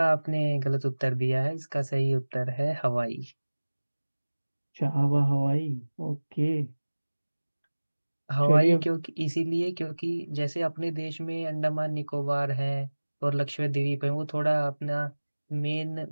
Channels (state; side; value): inverted; both; correlation -1.00